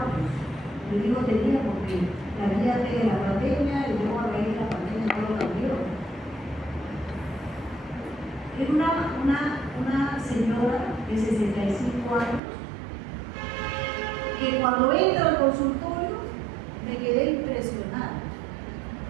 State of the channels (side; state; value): left; drops out; at 12.4 s